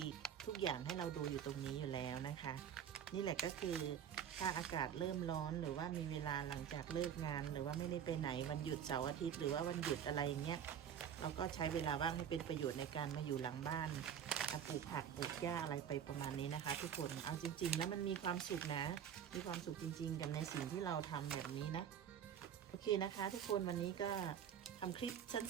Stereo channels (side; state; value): left; quieter; 8.7 dB